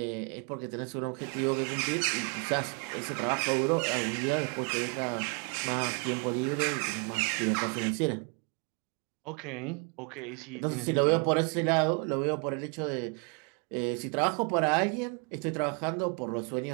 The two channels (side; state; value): left; quieter; 35.3 dB